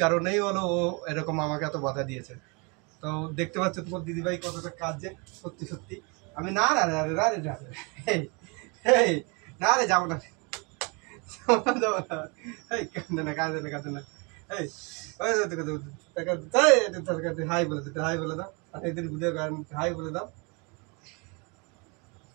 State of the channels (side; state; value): left; quieter; 31.1 dB